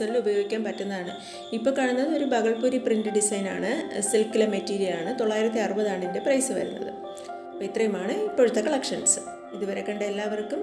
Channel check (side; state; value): both; identical; correlation 1.00